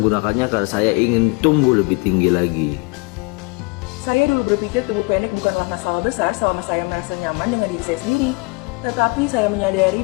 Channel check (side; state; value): right; quieter; 30.0 dB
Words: karena saya ingin tumbuh lebih tinggi lagi. Saya dulu berpikir tumbuh pendek bukanlah masalah besar selama saya merasa nyaman dengan diri saya sendiri. Tetapi saya menyadari